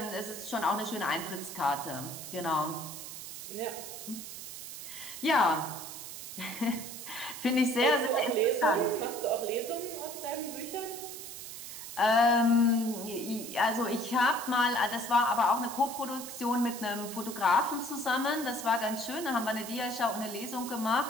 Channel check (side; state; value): right; noise; hiss, 10 dB below the sound